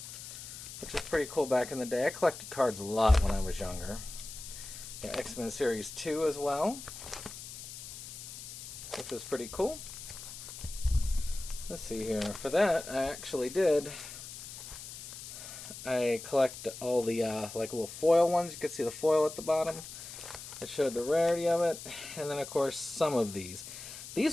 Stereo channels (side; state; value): left; noise; hiss, 11 dB below the sound